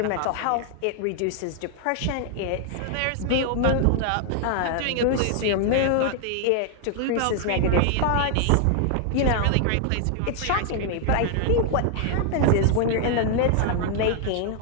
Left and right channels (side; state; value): both; different; correlation 0.00